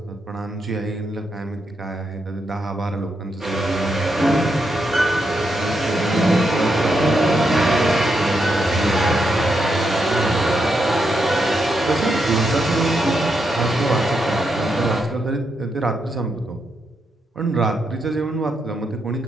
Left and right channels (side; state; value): both; normal; correlation 0.82